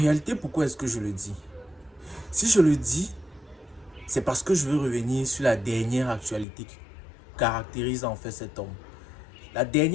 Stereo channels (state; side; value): drops out; right; at 6.5 s